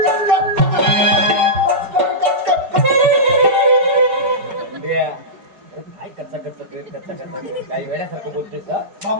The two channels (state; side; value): late; left; 4.7 ms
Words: काय कच्चा कच्चा काय वेड्यासारखं बोलतोय का?